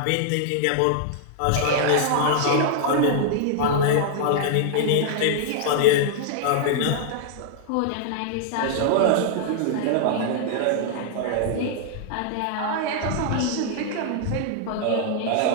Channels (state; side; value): different; both; correlation -0.01